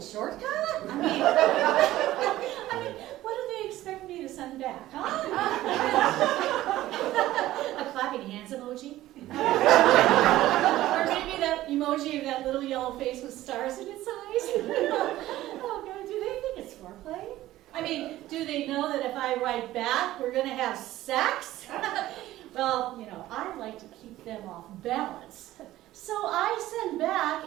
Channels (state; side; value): quieter; left; 15.2 dB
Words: shortcut? I mean, what do they expect me to send back, huh? A clapping hands emoji? Or maybe that emoji of that little yellow face with stars in its eyes? Oh God, do they think it's foreplay? I mean, do they know that if I write back, we're going to have sex? Well, you know, I like to keep them off balance. So I send